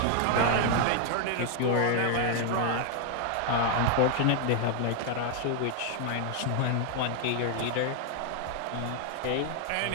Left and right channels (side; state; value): both; different; correlation 0.00